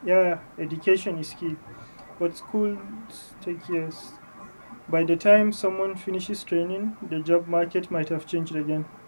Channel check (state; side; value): inverted; both; correlation -1.00